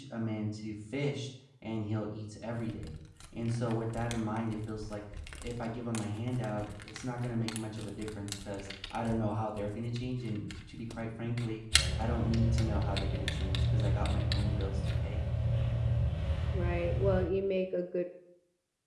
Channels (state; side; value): identical; both; correlation 1.00